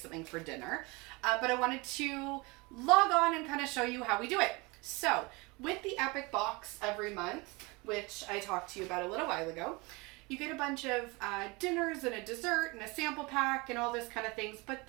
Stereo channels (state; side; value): quieter; left; 25.9 dB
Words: for dinner, but I wanted to log on and kind of show you how we do it. So, with the Epic box every month, which I talked to you about a little while ago, you get a bunch of dinners and a dessert and a sample pack and all this kind of things, but